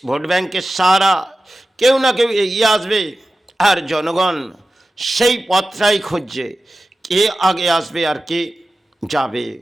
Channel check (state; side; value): normal; both; correlation 0.94